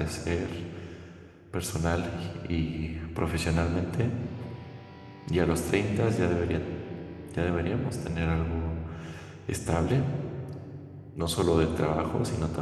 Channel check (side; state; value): both; identical; correlation 1.00